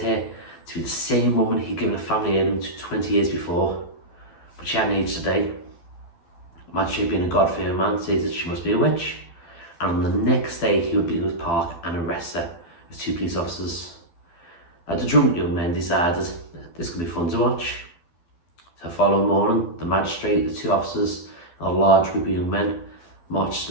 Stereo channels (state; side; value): late; right; 12 ms